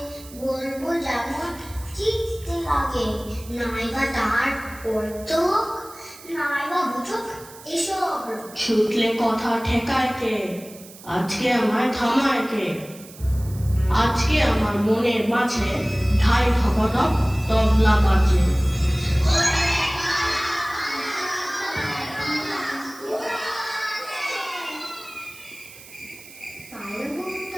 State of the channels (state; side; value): noise; right; hiss, 19 dB below the sound